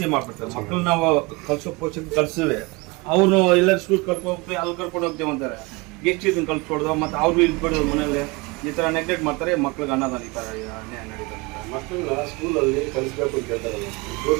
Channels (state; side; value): quieter; left; 25.7 dB